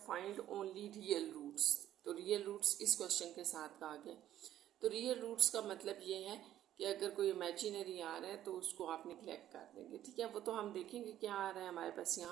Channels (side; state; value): left; quieter; 12.2 dB